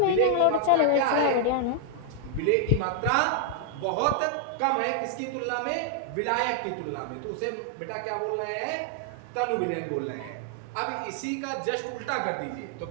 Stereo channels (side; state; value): both; different; correlation 0.00